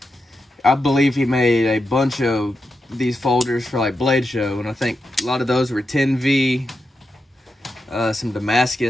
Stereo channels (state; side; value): normal; both; correlation 0.88